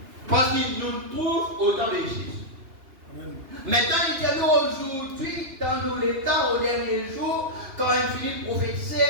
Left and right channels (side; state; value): left; late; 2.9 ms